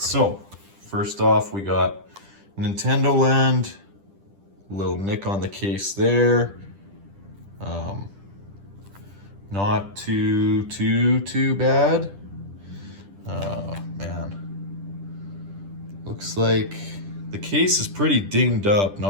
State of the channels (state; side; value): late; left; 10 ms